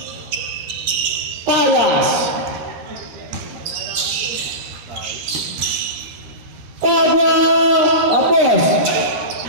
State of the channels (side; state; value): left; late; 13 ms